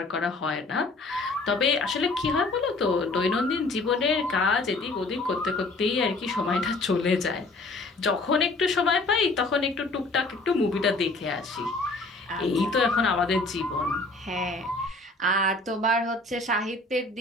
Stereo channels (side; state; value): right; quieter; 3.1 dB